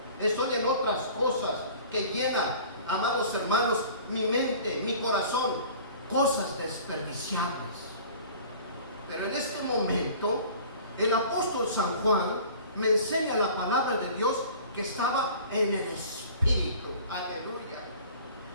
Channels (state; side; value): inverted; both; correlation -0.45